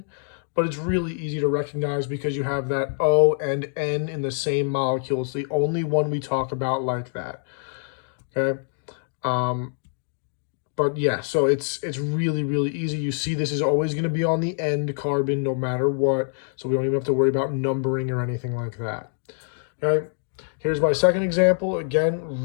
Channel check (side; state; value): right; silent; digital silence